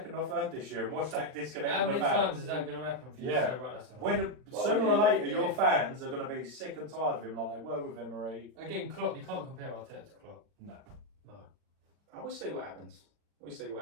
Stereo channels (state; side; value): late; left; 39 ms